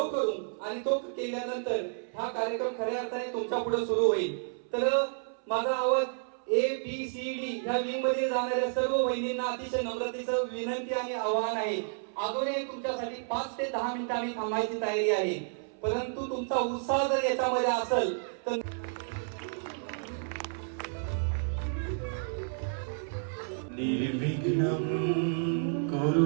करून आणि तो केल्यानंतर हा कार्यक्रम खऱ्या अर्थाने तुमच्या पुढे सुरू होईल. तर माझा आवाज ABCD ह्या विंग मध्ये जाणाऱ्या सर्व वहिनींना अतिशय नम्रतेचं विनंती आणि आवाहन आहे. अजूनही तुमच्यासाठी 5 ते 10 मिनिटं आम्ही थांबायची तयारी आहे, परंतु तुमचा उत्साह जर याच्यामध्ये असेल तर निर्विघ्नं कुरु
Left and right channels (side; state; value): left; silent; 57 dB below the other